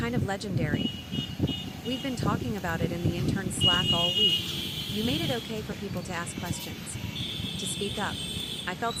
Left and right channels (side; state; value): both; identical; correlation 1.00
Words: of legendary. We've been talking about it in the intern Slack all week. You made it okay for people to ask questions, to speak up." I felt